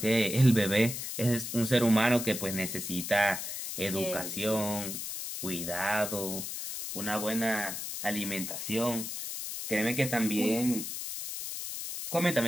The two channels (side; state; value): left; noise; hiss, 6 dB below the sound